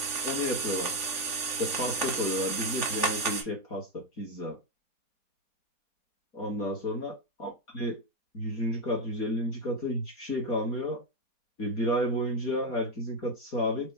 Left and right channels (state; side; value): late; right; 4.2 ms